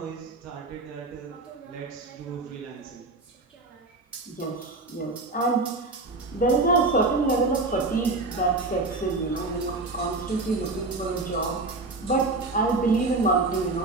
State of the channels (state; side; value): quieter; left; 3.3 dB